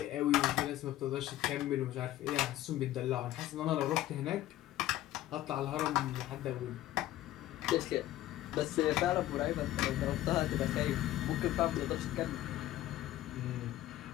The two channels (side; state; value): right; quieter; 14.4 dB